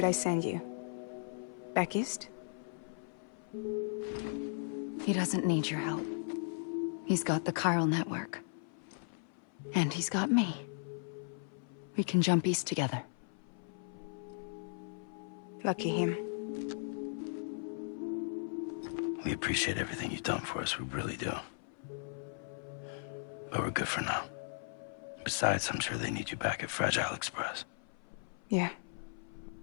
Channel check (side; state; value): right; silent; 53 dB below the other